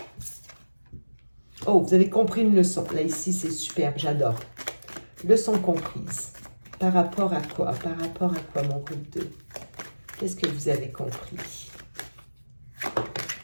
Oh, vous avez compris une leçon. Là, ici, c'est superbe, j'adore. Leçon comprise. Par rapport à quoi? Par rapport à quoi, mon groupe 2? Qu'est-ce que vous avez compris?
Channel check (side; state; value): both; inverted; correlation -1.00